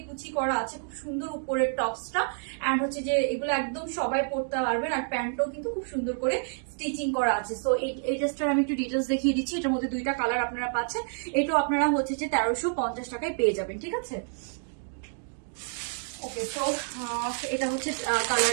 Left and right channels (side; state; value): left; silent; digital silence